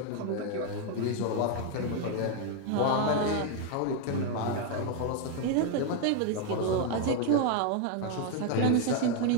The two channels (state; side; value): different; both; correlation 0.01